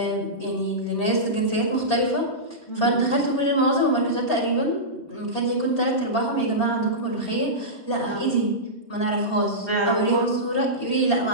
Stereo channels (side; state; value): right; late; 4.4 ms